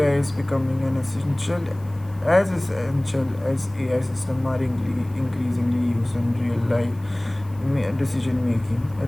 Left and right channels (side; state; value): left; noise; hiss, 28 dB below the sound